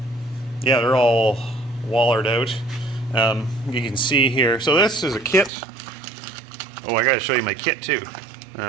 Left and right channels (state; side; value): drops out; left; at 5.5 s